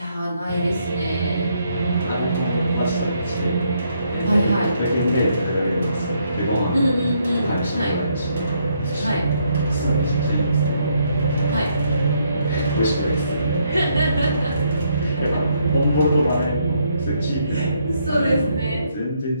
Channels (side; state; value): both; inverted; correlation -0.73